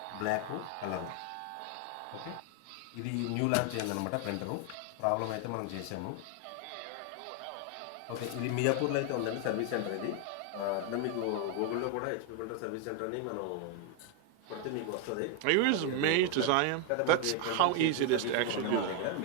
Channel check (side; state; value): both; different; correlation 0.01